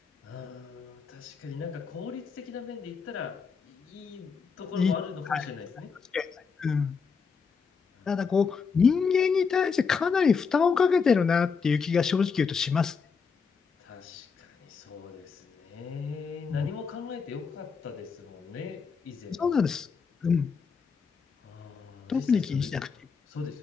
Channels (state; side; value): quieter; right; 5.6 dB